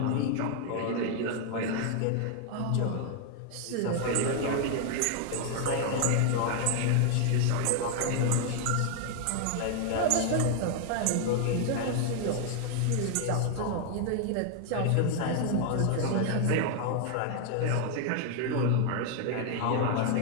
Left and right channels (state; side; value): different; both; correlation 0.00